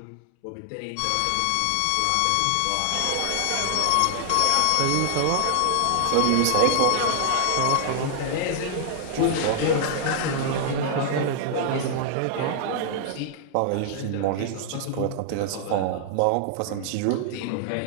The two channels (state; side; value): different; both; correlation 0.00